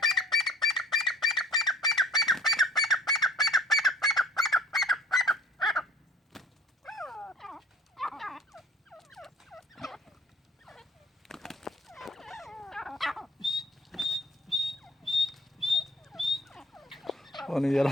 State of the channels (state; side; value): normal; both; correlation 0.48